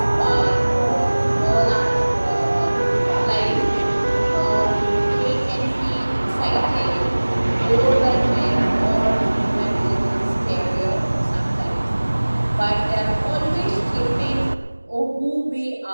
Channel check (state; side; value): inverted; both; correlation -1.00